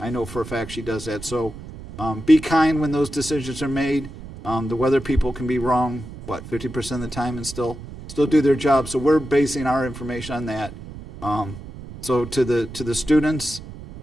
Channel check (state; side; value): noise; right; rumble, 14 dB below the sound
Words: know for a fact she does that. So be kind when those decisions are made. The weather people can be wrong, 50% of the time, and still do their job. So we're basing our information on that. So to the students,